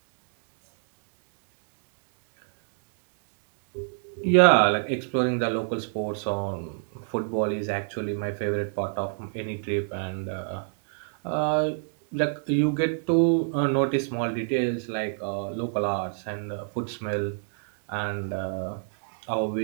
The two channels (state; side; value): silent; left; digital silence